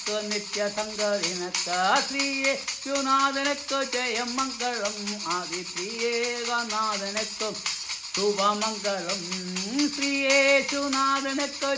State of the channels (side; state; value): both; identical; correlation 1.00